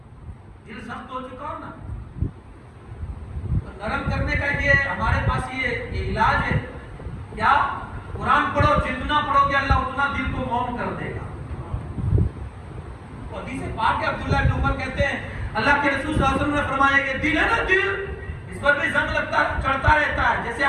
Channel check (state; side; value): identical; both; correlation 1.00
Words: دل سخت ہو چکا ہو نا، نرم کرنے کا یہ ہمارے پاس یہ علاج ہے. کیا؟ قرآن پڑھو، جتنا پڑھو گے اللہ اتنا دل کو موم کر دے گا. حدیث پاک ہے، عبداللہ بن عمر کہتے ہیں اللہ کے رسول صلی اللہ علیہ وسلم نے فرمایا کہ دل ہے نا، دل اس پر بھی زنگ لگتا چڑھتا رہتا ہے. جیسے